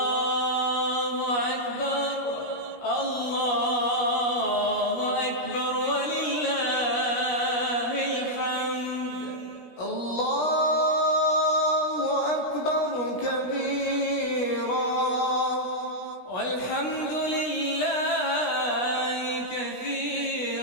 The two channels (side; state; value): right; late; 17 ms